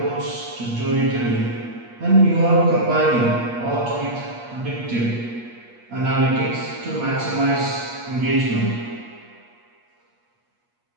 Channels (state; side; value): late; left; 8.4 ms